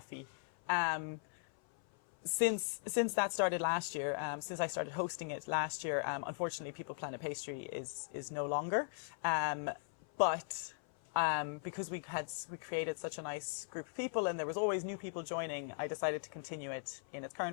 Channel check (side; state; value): right; silent; 52 dB below the other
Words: Since that started last year, since I started hosting it last year, unfortunately, People Planet Pastry is no longer. But because we created such a nice group of people and there was always new people joining, I decided to continue it in its